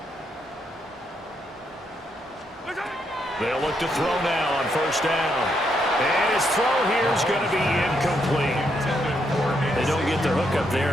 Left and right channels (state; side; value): normal; both; correlation 0.77